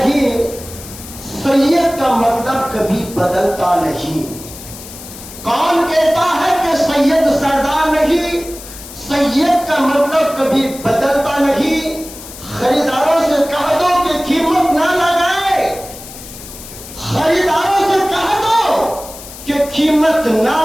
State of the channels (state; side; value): noise; left; hiss, 15 dB below the sound